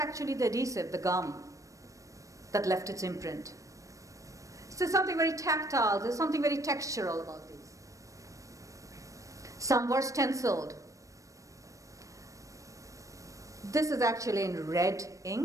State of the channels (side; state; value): left; late; 0.16 ms